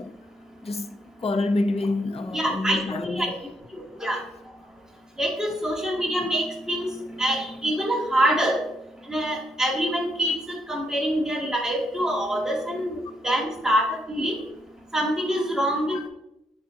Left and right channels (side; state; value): both; normal; correlation 0.76